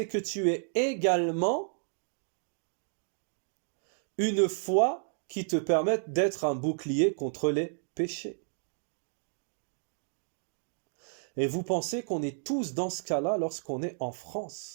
que tu aies également une foi qui te permette d'être un bouclier contre les péchés. Et vous pensez qu'on est tous dans ce cas-là lorsqu'on est en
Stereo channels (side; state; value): left; silent; digital silence